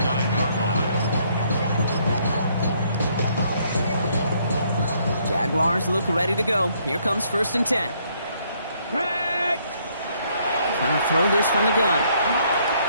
line. Jaguars look ready to go. Here comes first and 10. Trying to throw this from the gun.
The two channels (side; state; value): both; inverted; correlation -0.68